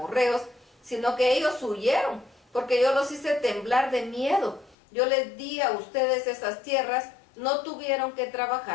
sino que ellos huyeron, porque yo los hice temblar de miedo. Yo les di a ustedes esas tierras, no tuvieron que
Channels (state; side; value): drops out; right; at 4.8 s